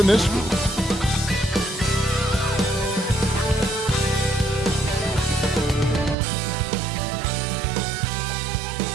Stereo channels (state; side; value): drops out; left; at 6.2 s